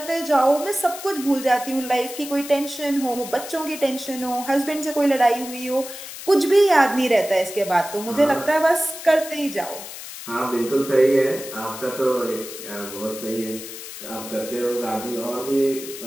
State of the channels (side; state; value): left; noise; hiss, 11 dB below the sound